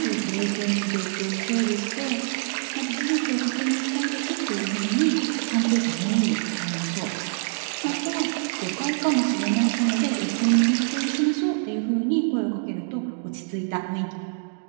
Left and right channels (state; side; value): silent; left; 62 dB below the other